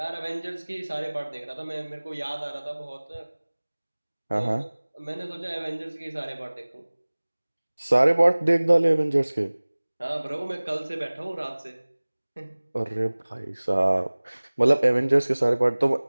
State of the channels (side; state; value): both; inverted; correlation -1.00